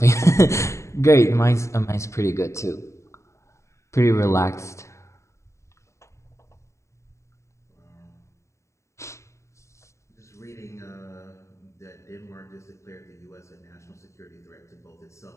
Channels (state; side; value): late; right; 0.14 ms